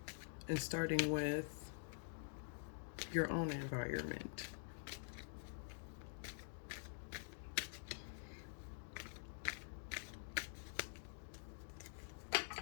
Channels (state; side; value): silent; right; digital silence